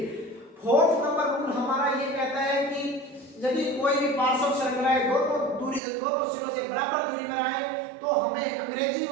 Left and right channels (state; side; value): drops out; left; at 5.8 s